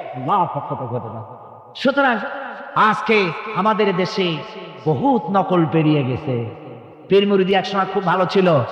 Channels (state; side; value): identical; both; correlation 1.00